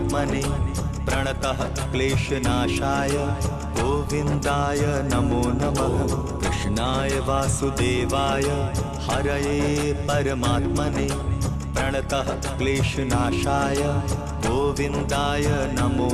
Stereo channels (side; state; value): both; identical; correlation 1.00